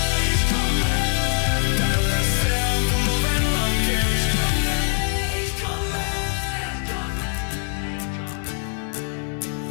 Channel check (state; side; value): silent; right; digital silence